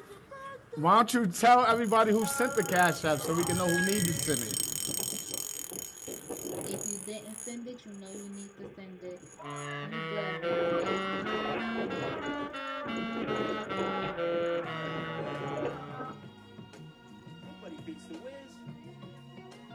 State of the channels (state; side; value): identical; both; correlation 1.00